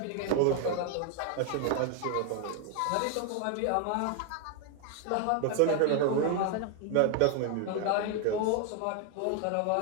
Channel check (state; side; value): different; both; correlation 0.00